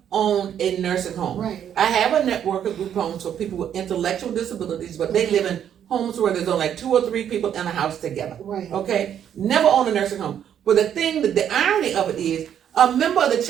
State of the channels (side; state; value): left; quieter; 9.4 dB